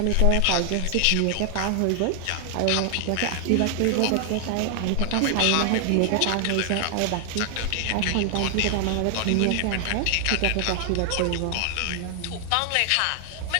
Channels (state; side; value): different; both; correlation 0.00